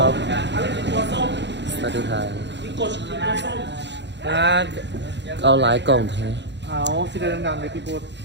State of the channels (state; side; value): late; left; 0.52 ms